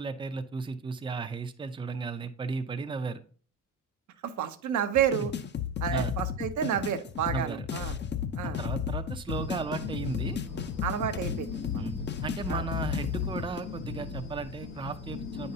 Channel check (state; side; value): normal; both; correlation 0.22